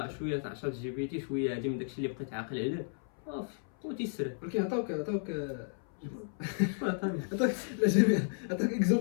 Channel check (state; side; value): silent; right; 55 dB below the other